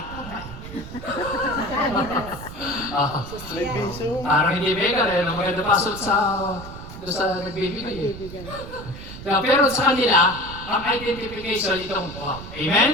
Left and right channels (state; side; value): noise; right; rumble, 12 dB below the sound